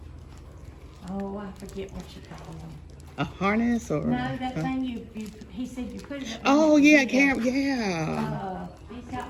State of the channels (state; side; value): identical; both; correlation 1.00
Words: I forget what you call them. A harness or? No, that thing he said you put it. Oh yeah, camera. Yeah. He's